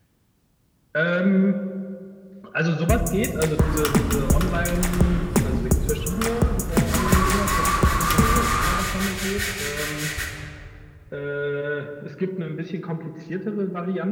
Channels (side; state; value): both; identical; correlation 1.00